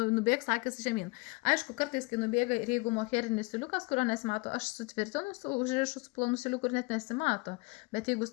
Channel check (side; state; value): right; quieter; 27.2 dB